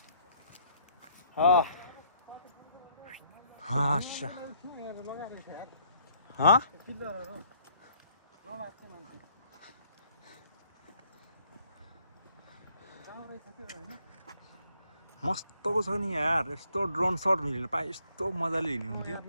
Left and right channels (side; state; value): both; inverted; correlation -0.65